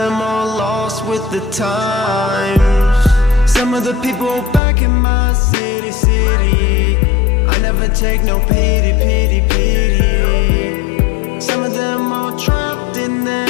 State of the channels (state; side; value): drops out; right; at 4.6 s